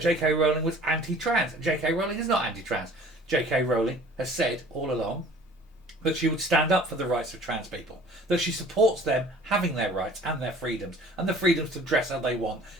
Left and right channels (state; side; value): normal; both; correlation 0.49